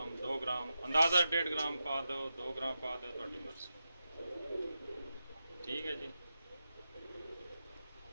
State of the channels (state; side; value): inverted; both; correlation -0.90